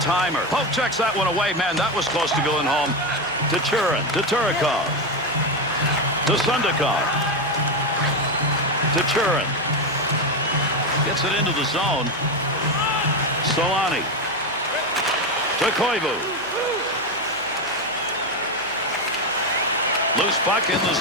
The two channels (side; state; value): right; noise; hum, 27 dB below the sound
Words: Pope checks that one away. Man, that was close to going home. To Churin. To Turikov. To Sundakov. To Churin. Gets it into the zone. Solani. To Koivu. Loose puck in the